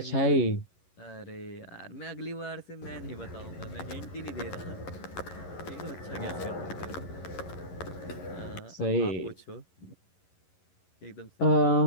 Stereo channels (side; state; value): right; late; 11 ms